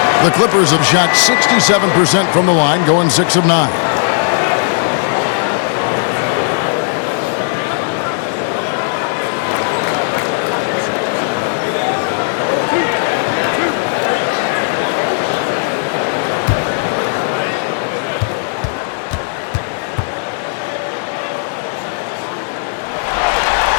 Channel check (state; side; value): silent; right; digital silence